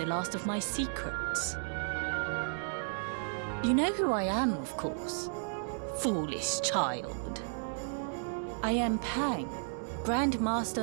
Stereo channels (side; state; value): left; silent; digital silence